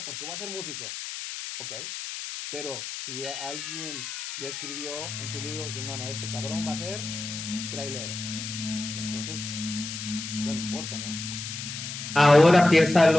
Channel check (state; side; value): noise; left; hiss, 7 dB below the sound